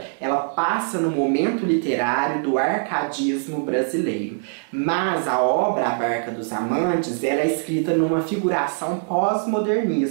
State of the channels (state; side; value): silent; left; 64 dB below the other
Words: ela passa no momento literário do arcadismo brasileiro. Mas a obra A Barca dos Amantes, ela é escrita numa figuração